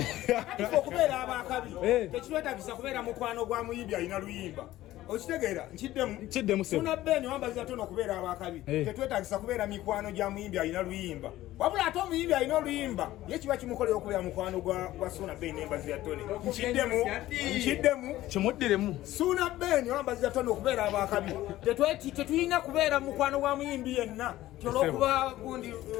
ifo kubeera abakabi tekitwetagisa kubeera mukwano gwa muyimbi alina luyimba okitegeera nkiddemu Suna Beni wambaziza tono okubeera abakabi tetwetagisa kubeera mikwano gya muyimbi alina luyimba wabula ate omuyimbi alina oluyimba ye kiba kimukolera okubeera mukwano gwa Suna Beni nembaziza tone nkiddemu kimuddiremu Suna Beni wambaziza tono okubeera abakabi tetulina kubeera mukwano gwa muyimbi yenna kyolwokuba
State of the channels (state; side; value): quieter; right; 15.3 dB